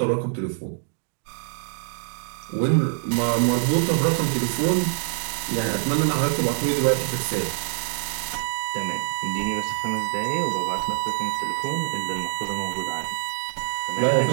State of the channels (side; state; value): left; silent; digital silence